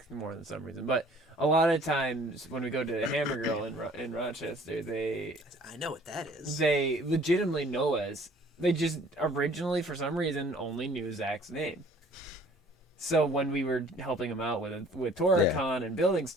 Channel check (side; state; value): both; normal; correlation 0.54